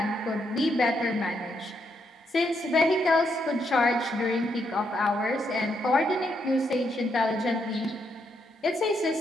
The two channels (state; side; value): normal; both; correlation 0.78